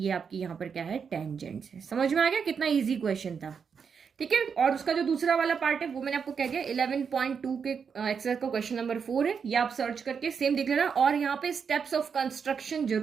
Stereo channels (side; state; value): left; quieter; 6.4 dB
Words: आपकी यहाँ पर क्या है, टेंजेंट है। समझ में आ गया, कितना इजी क्वेश्चन था। ठीक है, और उसका जो दूसरा वाला पार्ट है वो मैंने आपको कह दिया 11.2 के एक्सरसाइज का क्वेश्चन नंबर 4 है। ये आप सर्च करके सेम देख लेना। और यहाँ पे स्टेप्स ऑफ कंस्ट्रक्शन